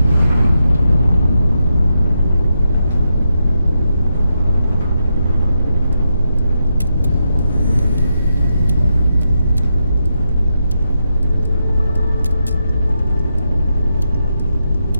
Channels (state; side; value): inverted; both; correlation -0.84